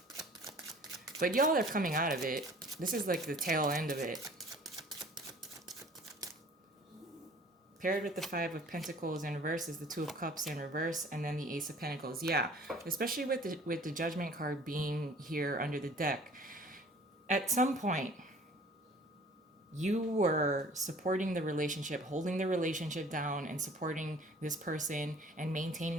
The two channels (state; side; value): normal; both; correlation 0.50